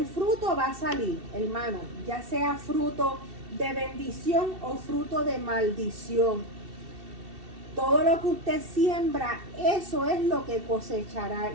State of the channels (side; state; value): left; late; 2.7 ms